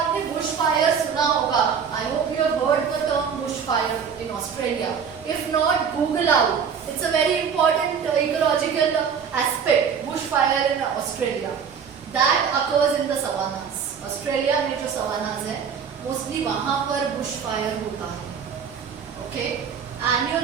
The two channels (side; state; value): left; quieter; 6.9 dB